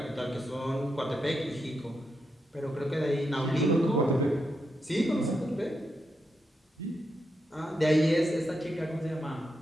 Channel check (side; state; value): both; normal; correlation 0.84